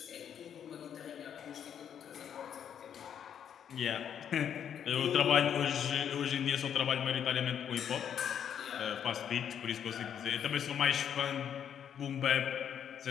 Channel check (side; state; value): right; quieter; 8.8 dB